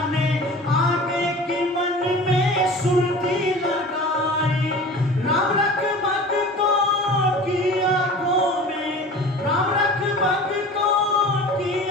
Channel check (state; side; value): normal; both; correlation 0.39